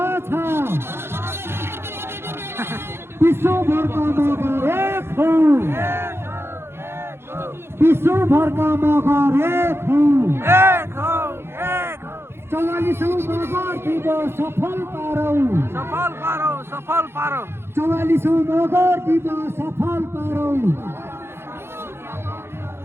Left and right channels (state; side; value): late; left; 0.12 ms